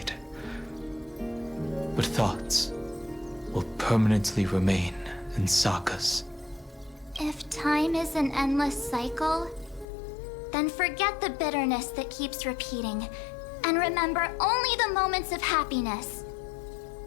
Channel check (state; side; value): drops out; right; at 9.9 s